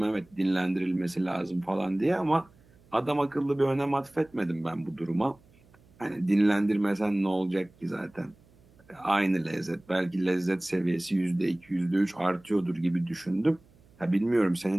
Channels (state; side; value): noise; right; hum, 29 dB below the sound